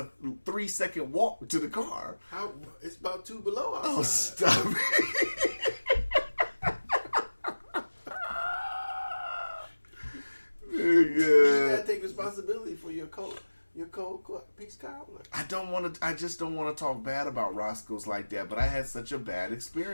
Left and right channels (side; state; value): both; inverted; correlation -1.00